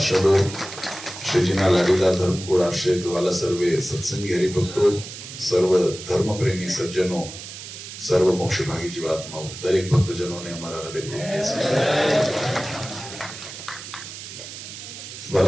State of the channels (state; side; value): noise; right; hiss, 12 dB below the sound